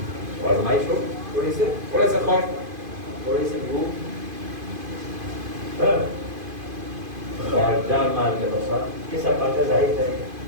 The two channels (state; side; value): late; left; 2.5 ms